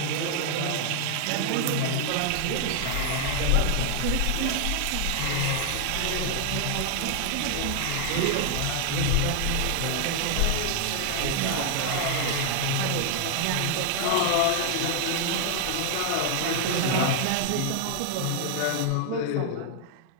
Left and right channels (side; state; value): both; different; correlation 0.00